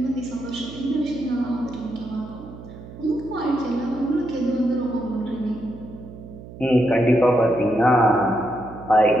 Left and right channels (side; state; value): right; noise; hum, 15 dB below the sound